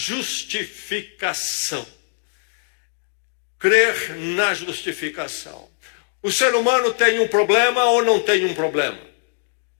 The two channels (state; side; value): silent; right; digital silence